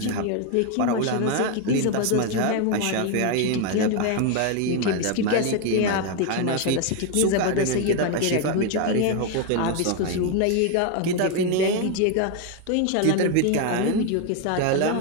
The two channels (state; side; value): different; both; correlation 0.01